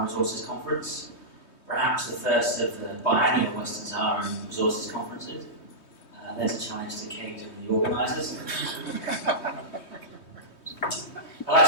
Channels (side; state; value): right; late; 3.2 ms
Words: Resources Conference, perhaps the first of the biannual Western Sahara Resources Conferences. There's a challenge to Kate and the organisers. I'd like